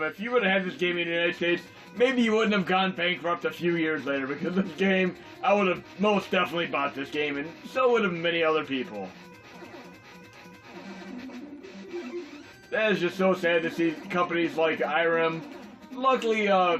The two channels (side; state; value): both; identical; correlation 1.00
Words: if you would have had this game in the United States, maybe you wouldn't have gone bankrupt a few years later, because this game, I would have most definitely bought this game, and so would have many other people. That is just so sad to see companies like Irem. Luckily,